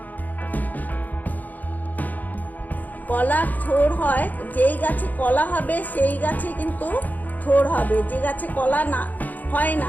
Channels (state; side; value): late; right; 0.082 ms